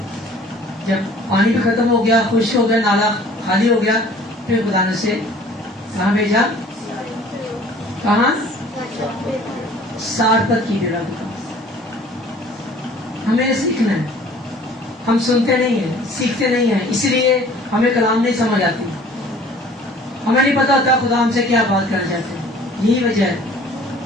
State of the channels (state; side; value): normal; both; correlation 0.51